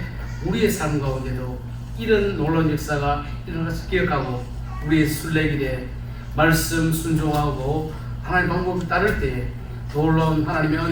우리의 삶 가운데도 이런 놀라운 역사가 일어날 수 기억하고 우리의 순례길에 말씀 순종하고 하나님 방법을 따를 때에 놀라운 하나님의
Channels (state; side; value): identical; both; correlation 1.00